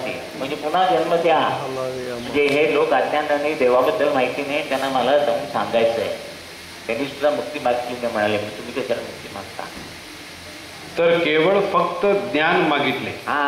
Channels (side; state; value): both; identical; correlation 1.00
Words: म्हणजे पुन्हा जन्म द्या. म्हणजे हे लोक अज्ञानाने देवाबद्दल माहिती नाही, त्यांना मला जाऊन सांगायचं आहे. त्यांनी सुद्धा मुक्ती मागितली नाही. म्हणाले तुम्ही कशाला मुक्ती मागता? तर केवळ फक्त ज्ञान मागितले